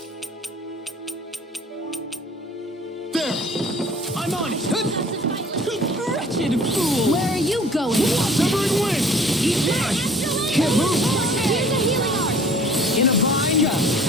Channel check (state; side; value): normal; both; correlation 0.51